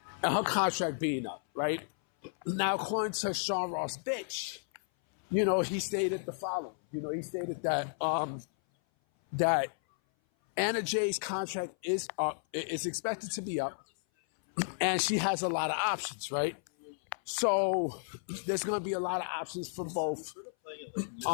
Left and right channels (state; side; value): silent; right; 56 dB below the other